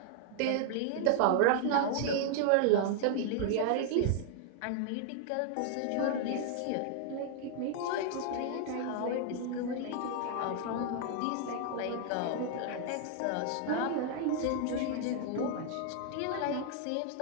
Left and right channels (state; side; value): different; both; correlation 0.00